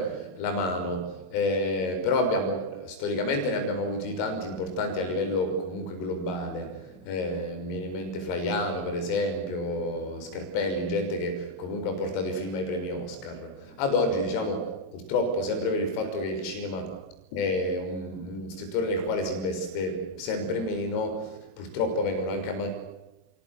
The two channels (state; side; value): late; right; 22 ms